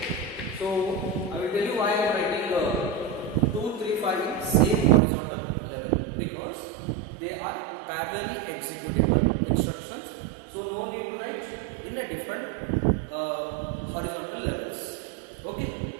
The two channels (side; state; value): left; drops out; at 5.0 s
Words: So I will tell you why I am writing 2, 3, 5 in same horizontal level, because they are parallelly executable instructions. So no need to write in a different horizontal levels. Okay.